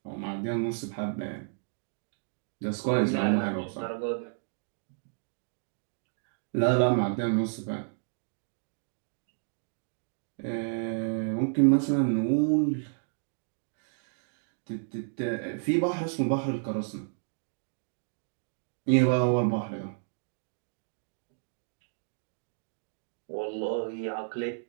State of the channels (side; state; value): left; silent; digital silence